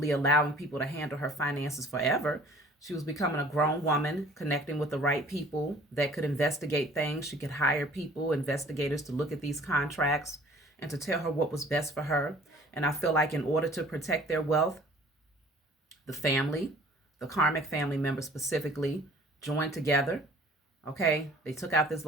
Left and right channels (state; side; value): normal; both; correlation 0.51